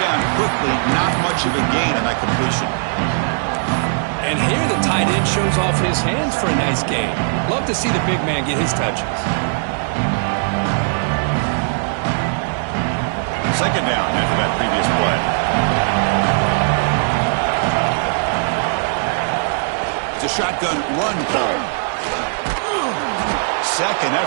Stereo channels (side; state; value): left; silent; digital silence